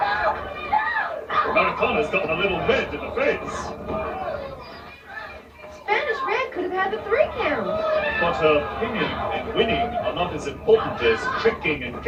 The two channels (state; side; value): identical; both; correlation 1.00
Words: Americana's gotten a little red in the face. Spanish Red could have had the 3 count. But her pinning and winning are not as important as tricking and